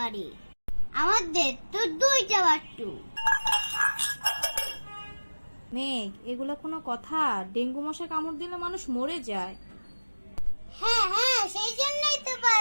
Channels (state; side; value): inverted; both; correlation -1.00